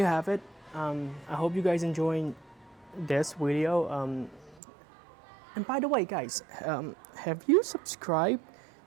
have it. I hope you guys enjoying this video. And by the way, guys, have you subscribed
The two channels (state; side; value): drops out; left; at 4.6 s